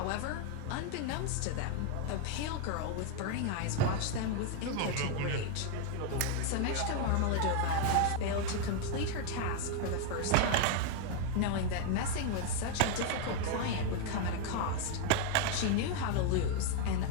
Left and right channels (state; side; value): different; both; correlation 0.00